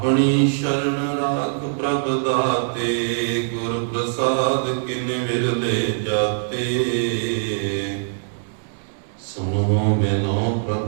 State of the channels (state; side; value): silent; left; 64 dB below the other